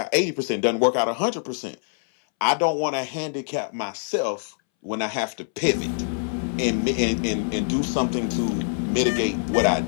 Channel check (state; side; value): silent; right; 62 dB below the other